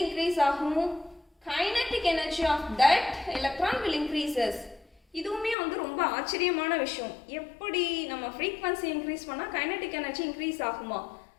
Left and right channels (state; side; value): drops out; right; at 5.6 s